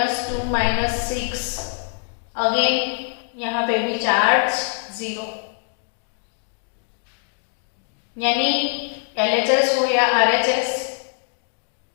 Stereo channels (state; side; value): silent; right; 61 dB below the other